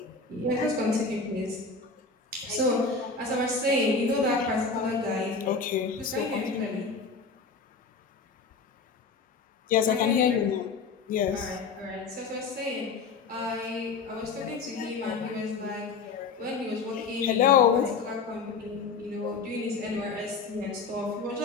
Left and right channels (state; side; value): quieter; right; 4.7 dB